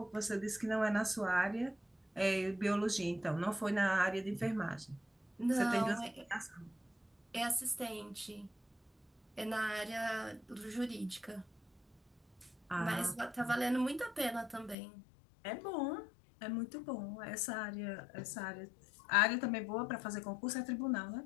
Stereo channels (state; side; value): drops out; right; at 14.8 s